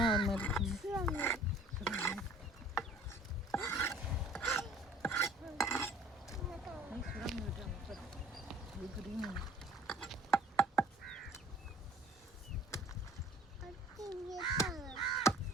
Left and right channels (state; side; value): normal; both; correlation 0.52